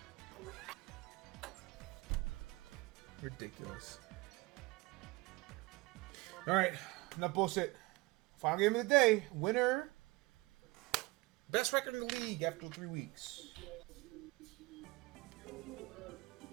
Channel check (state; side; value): quieter; left; 22.9 dB